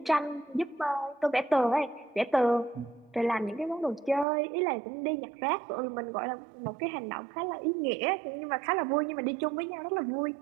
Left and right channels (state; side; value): drops out; left; at 4.2 s